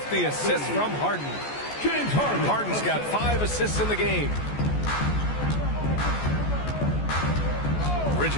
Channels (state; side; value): late; right; 14 ms